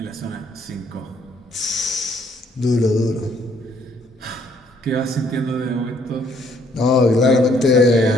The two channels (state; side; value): normal; both; correlation 0.66